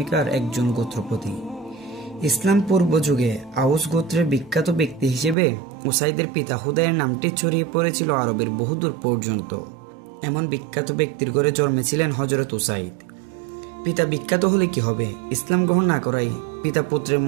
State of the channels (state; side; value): drops out; left; at 5.4 s